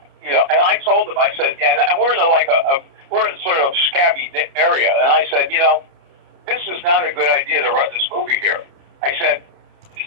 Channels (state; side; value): late; left; 30 ms